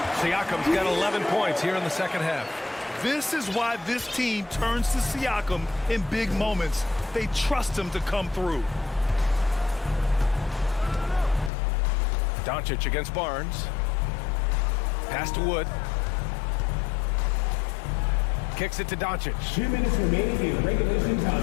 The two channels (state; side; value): drops out; right; at 11.5 s